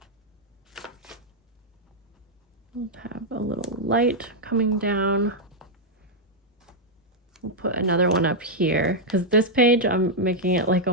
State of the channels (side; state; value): both; normal; correlation -0.03